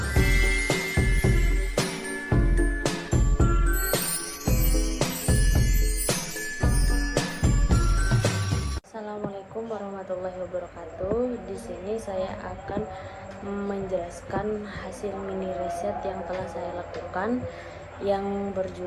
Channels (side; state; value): both; identical; correlation 1.00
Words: warahmatullahi wabarakatuh. Di sini saya akan menjelaskan hasil mini riset yang telah saya lakukan yang